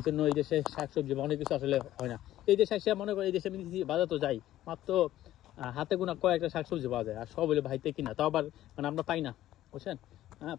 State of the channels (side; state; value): right; quieter; 13.8 dB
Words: জন্য এই দেশে শাকসবজি বা অনেক কিছু আসলে হয় না। এই দেশে এসে মনে করি এই দেশে বাজার তো যাই মাত্র হাতে গোনা কয়েকটা শাকসবজি পাওয়া যায়, আর সব হলে ভাইতে কিনা, তাও আবার মানে আমরা পাই না, বুঝছেন। হ্যাঁ,